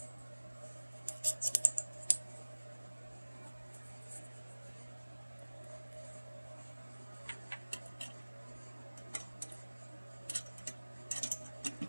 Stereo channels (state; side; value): inverted; both; correlation -1.00